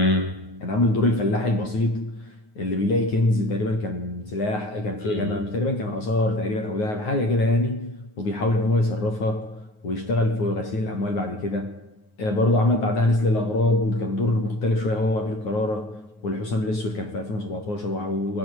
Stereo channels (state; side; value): late; right; 9.5 ms